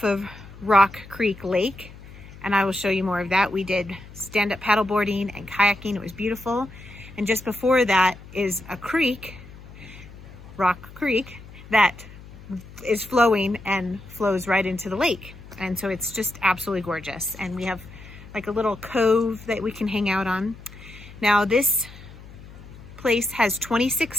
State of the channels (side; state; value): left; noise; hum, 18 dB below the sound